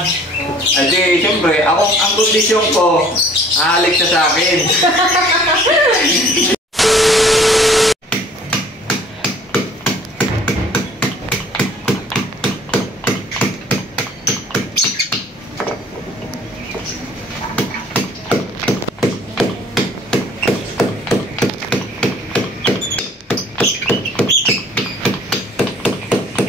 adi, siyempre, ang kondisyon ko, halik siya sa akin.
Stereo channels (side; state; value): both; normal; correlation 0.53